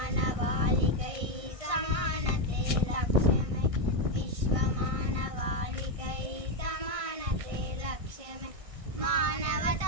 సమానతే లక్ష్యమై విశ్వమానవాళికై సమానతే లక్ష్యమై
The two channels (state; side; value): late; left; 1.6 ms